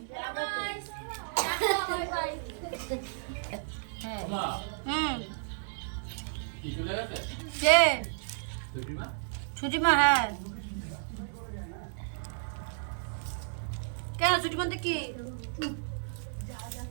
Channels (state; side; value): silent; left; digital silence